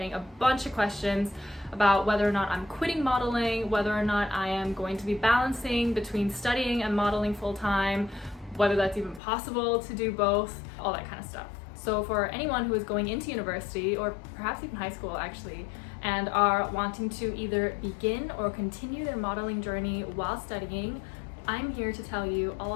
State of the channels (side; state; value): right; drops out; at 9.2 s